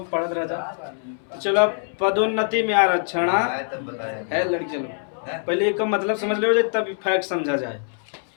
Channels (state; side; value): silent; right; 63 dB below the other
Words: पढ़त रह जा। चलो पदोन्नति में आरक्षण है लड़की। चलो पहले एक मतलब समझ लो तब फैक्ट समझा जाए।